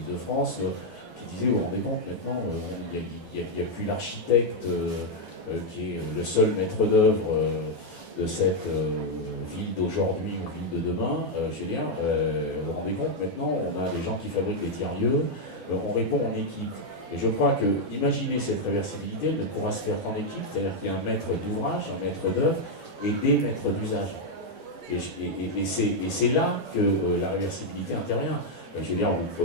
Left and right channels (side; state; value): right; late; 11 ms